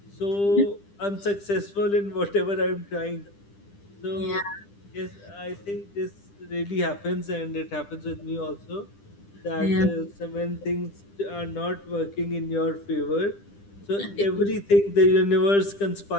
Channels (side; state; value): right; late; 10 ms